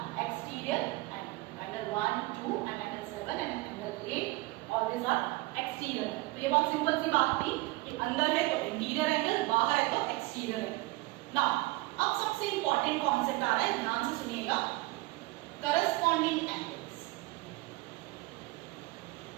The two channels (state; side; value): quieter; left; 21.7 dB